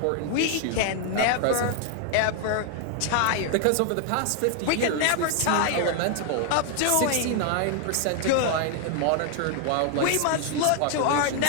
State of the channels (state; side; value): different; both; correlation 0.00